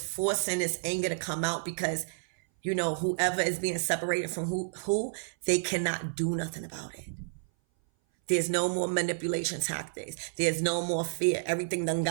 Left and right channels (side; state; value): left; silent; 58 dB below the other